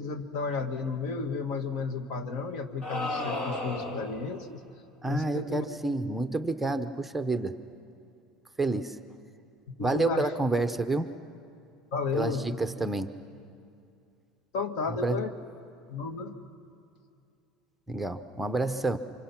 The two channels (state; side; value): normal; both; correlation 0.58